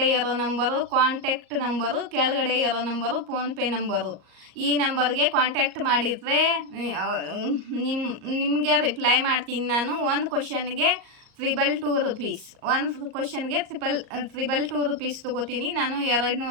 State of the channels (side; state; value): left; late; 38 ms